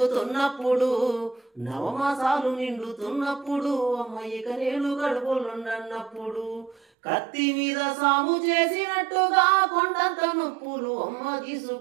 నవమాసాలు నిండుతున్నప్పుడు, అమ్మయ్యక నేను గడుపులుండన్నప్పుడు, కత్తి మీద సాము చేసినట్టుగా కొండంత నొప్పులు అమ్మ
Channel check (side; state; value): left; drops out; at 6.8 s